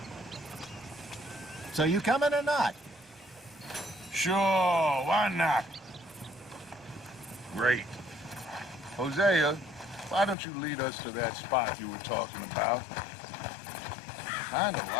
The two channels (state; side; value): drops out; right; at 10.4 s